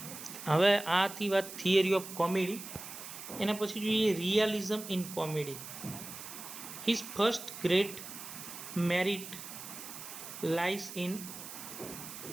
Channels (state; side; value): noise; right; hiss, 11 dB below the sound